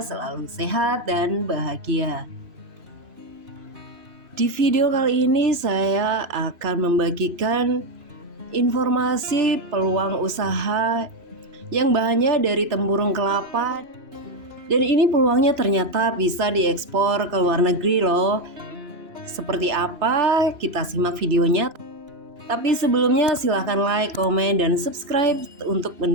selalu sehat dan bahagia. Di video kali ini saya akan membagikan informasi peluang usaha yang bahannya dari tempurung kelapa. Dan ini peluangnya ternyata bisa diekspor ke luar negeri loh. Seperti apa? Kita simak videonya. Tapi sebelumnya silahkan like, komen, dan subscribe untuk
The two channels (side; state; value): left; late; 3.0 ms